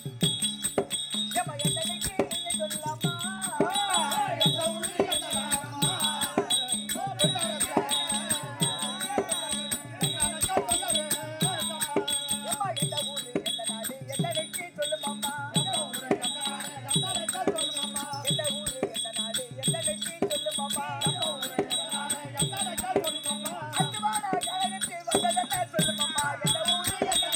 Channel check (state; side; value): identical; both; correlation 1.00